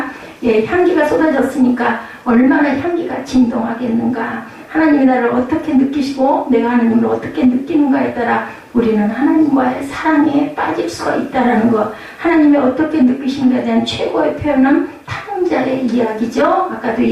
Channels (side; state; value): both; identical; correlation 1.00